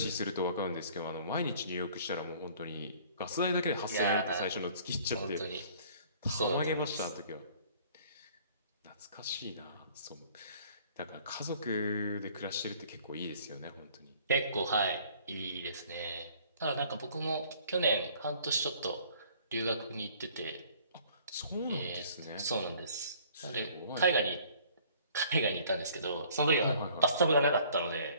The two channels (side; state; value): both; inverted; correlation -0.55